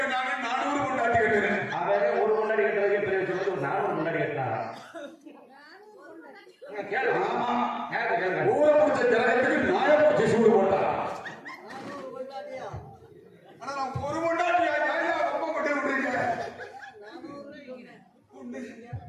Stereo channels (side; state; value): both; identical; correlation 1.00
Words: 400 கொண்டாட்டி கட்டுறேன். அவன் ஒரு கொண்டாடி கட்டுறதுக்கு பெரிய சொல்றது 400 கொண்டாடி கட்டினாங்க. ஊரை முடிச்ச ஜனத்துக்கு நாயப்பூச்சி சூடு போட்டா. ஆனா நான் ஒரு கொண்டாட்டி ரொம்ப கொண்டு விடுறீங்க.